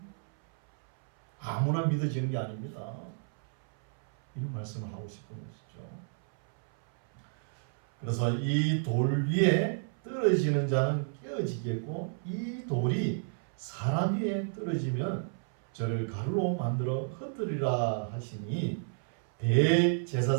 아무나 믿어지는 게 아닙니다. 이런 말씀을 하고 싶은 것이죠. 그래서 이 돌 위에 떨어지는 자는 깨어지겠고 이 돌이 사람 위에 떨어지면 저를 가루로 만들어 흩뜨리라 하시니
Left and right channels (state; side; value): silent; left; 57 dB below the other